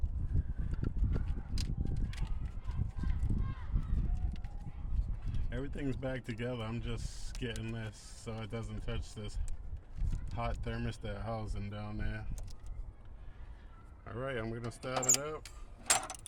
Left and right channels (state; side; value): identical; both; correlation 1.00